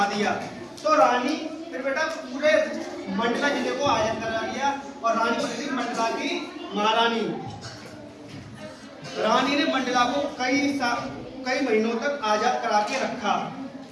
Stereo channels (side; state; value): both; identical; correlation 1.00